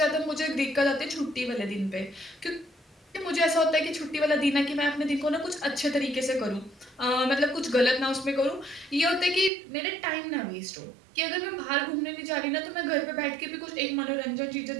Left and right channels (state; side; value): drops out; left; at 9.5 s